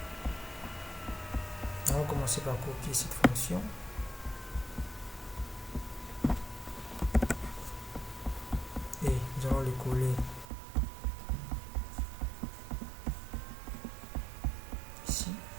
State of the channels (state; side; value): drops out; left; at 10.5 s